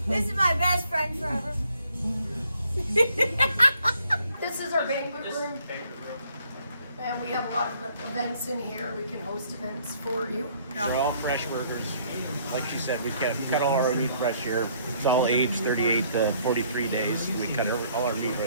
This is my best friend forever. This is our banquet room. And we have a lot of events in here. We can host events for you. They're all fresh burgers. Like she said, we cut all our meat fresh here. It's all aged 38 to 43 days. We cut all our meat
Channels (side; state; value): both; inverted; correlation -0.64